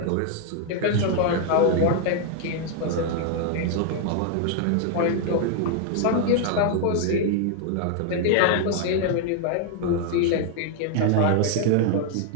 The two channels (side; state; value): both; different; correlation 0.00